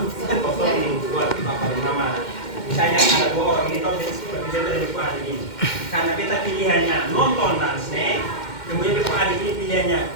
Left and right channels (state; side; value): late; right; 2.1 ms